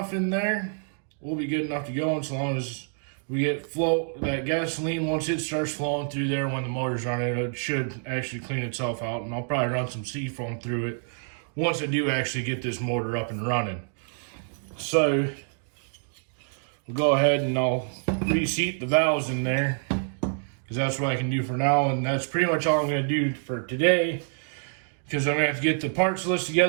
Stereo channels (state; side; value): silent; left; 60 dB below the other